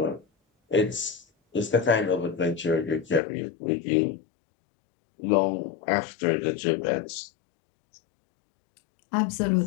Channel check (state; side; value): drops out; right; at 3.2 s